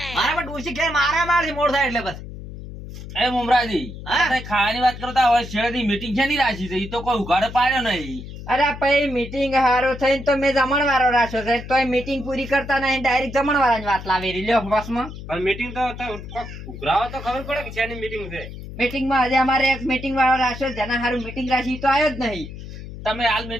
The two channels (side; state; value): left; noise; hum, 12 dB below the sound